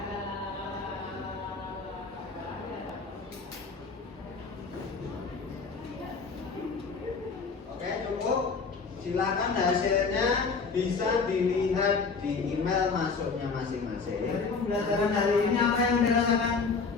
Silakan hasilnya bisa dilihat di email masuknya masing-masing. Dari pembelajaran hari ini apa yang dirasakan?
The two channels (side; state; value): right; quieter; 4.8 dB